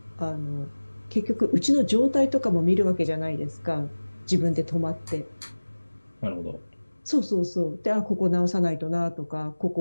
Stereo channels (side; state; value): both; inverted; correlation -1.00